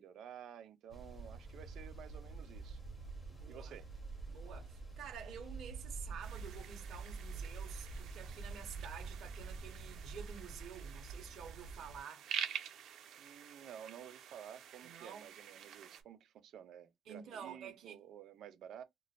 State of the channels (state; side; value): quieter; left; 6.0 dB